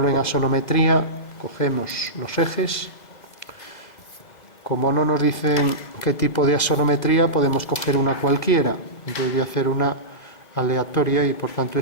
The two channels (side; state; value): right; late; 2.0 ms